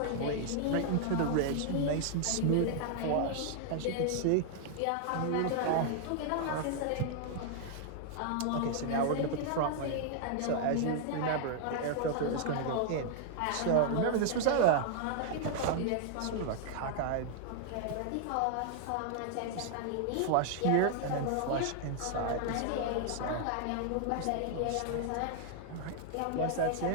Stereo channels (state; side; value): different; both; correlation -0.01